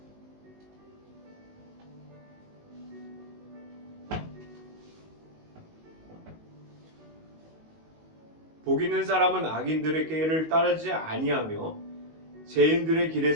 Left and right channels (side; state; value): left; late; 19 ms